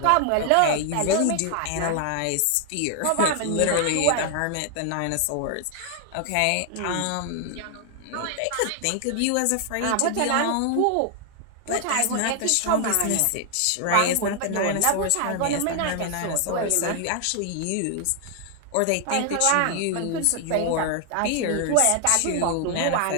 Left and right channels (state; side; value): different; both; correlation 0.00